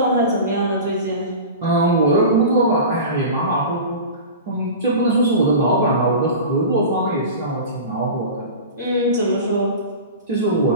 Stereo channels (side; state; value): both; inverted; correlation -0.32